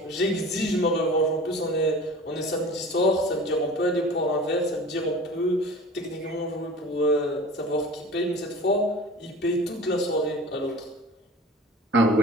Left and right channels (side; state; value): both; normal; correlation 0.40